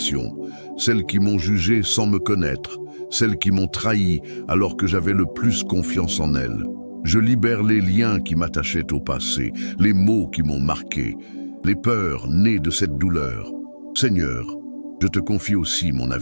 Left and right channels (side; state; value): both; inverted; correlation -1.00